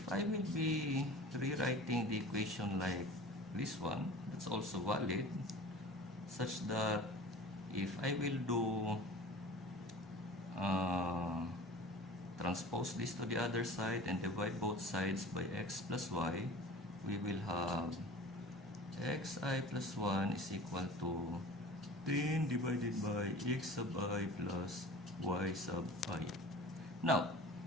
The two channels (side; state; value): both; normal; correlation 0.39